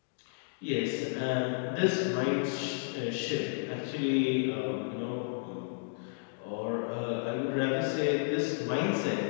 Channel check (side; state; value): right; silent; digital silence